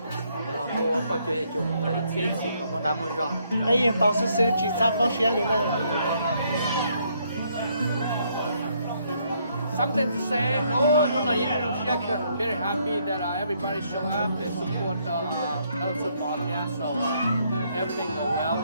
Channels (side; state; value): both; inverted; correlation -0.71